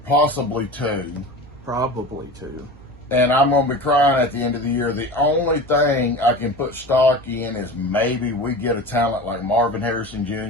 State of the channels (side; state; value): right; noise; hum, 25 dB below the sound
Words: possibly 2. Probably 2. And I'm going to be crying at the end of the year. The only thing I can put stock in is maybe we get a talent like Marvin Harrison